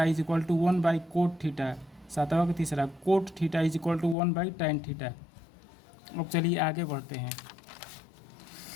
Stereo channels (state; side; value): drops out; right; at 4.2 s